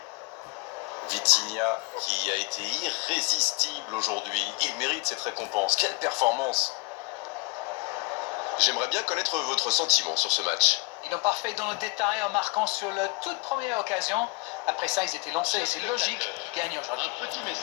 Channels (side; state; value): right; quieter; 27.3 dB